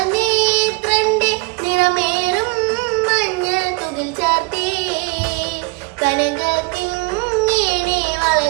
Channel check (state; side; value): quieter; left; 28.4 dB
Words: നേത്രന്റെ നിറമേറും മഞ്ഞ തുകിൽ ചാർത്തേ കനക കിങ്ങിണി